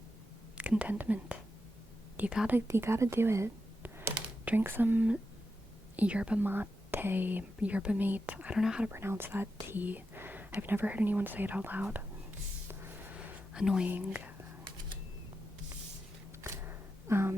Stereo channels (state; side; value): normal; both; correlation 0.88